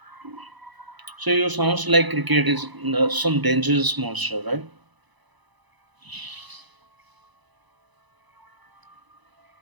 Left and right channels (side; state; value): left; late; 1.0 ms